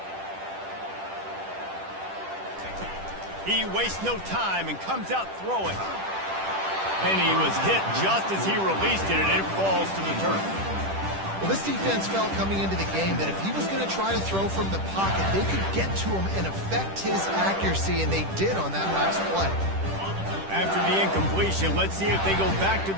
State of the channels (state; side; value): late; left; 10 ms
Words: He wastes no time and comes out throwing. And he was hit just as he released it, and it falls to the turf. Well, this defense felt coming into the game that if he was going to try to throw from the pocket, they could get to him and affect his accuracy, and they did on that last play. After the incompletion, let's see if they go back to